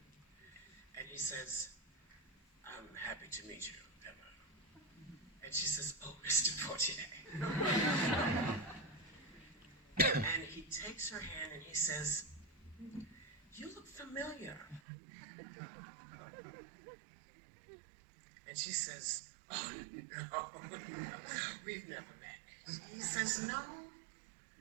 And he says, I'm happy to meet you, Emma. And she says, oh, Mr. Poitier. And he takes her hand and he says, you look familiar. And she says, oh, no, we've never met. He says, no,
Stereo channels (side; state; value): left; drops out; at 14.8 s